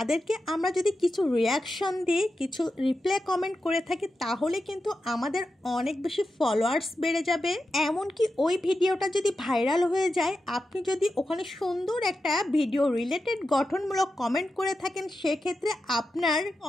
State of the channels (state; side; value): normal; both; correlation 0.90